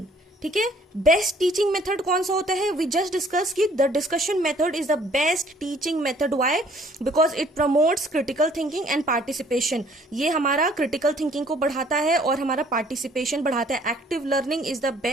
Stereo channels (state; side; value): normal; both; correlation 0.59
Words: ठीक है, बेस्ट टीचिंग मेथड कौन सा होता है? वी जस्ट डिस्कस कि the discussion method is the best teaching method. Why? Because it promotes critical thinking and participation. ये हमारा critical thinking को बढ़ाता है और हमारा पार्टिसिपेशन बढ़ाता है. Active learning is the